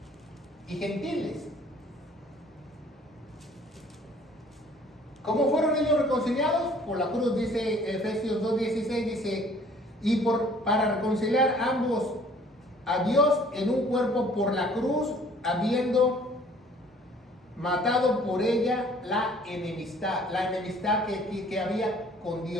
y gentiles. ¿Cómo fueron ellos reconciliados? Por la cruz, dice Efesios 2:16, dice, y para reconciliar ambos a Dios en un cuerpo por la cruz, habiendo matado por ella la enemistad que había con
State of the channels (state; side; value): normal; both; correlation 0.55